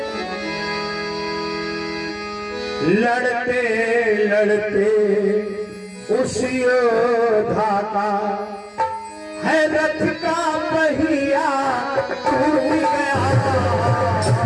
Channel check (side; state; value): both; identical; correlation 1.00